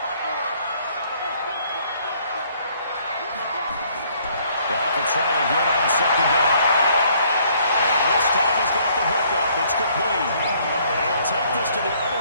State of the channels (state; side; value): inverted; both; correlation -0.63